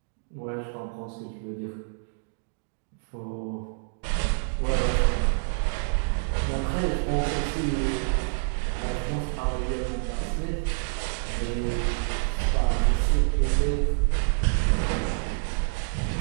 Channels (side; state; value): left; silent; digital silence